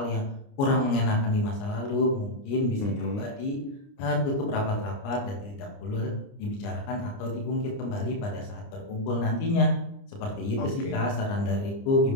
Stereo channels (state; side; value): late; right; 29 ms